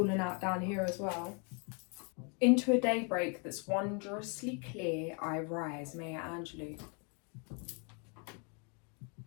out down here as well. Into a daybreak that's wondrously clear, I rise. Maya Angelou.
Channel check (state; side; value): quieter; right; 36.5 dB